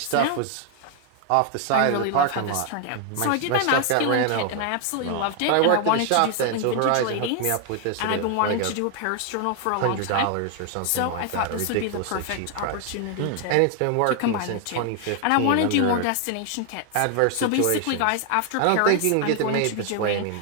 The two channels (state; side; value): different; both; correlation 0.00